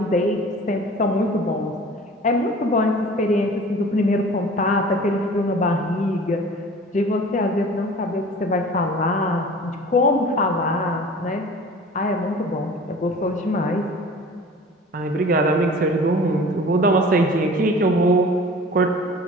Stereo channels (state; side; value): normal; both; correlation 0.43